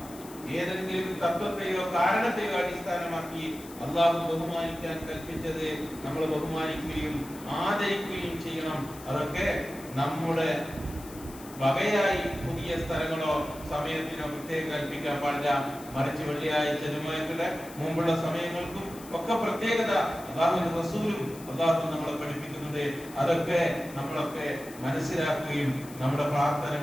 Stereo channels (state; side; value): noise; left; hiss, 18 dB below the sound